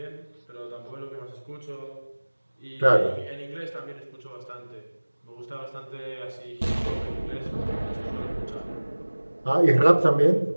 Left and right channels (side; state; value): both; inverted; correlation -1.00